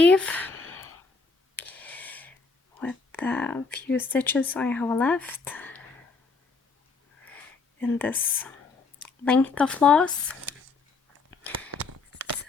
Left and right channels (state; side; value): quieter; right; 4.3 dB